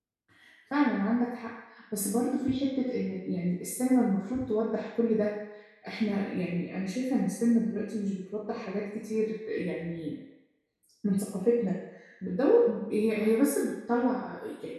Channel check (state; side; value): identical; both; correlation 1.00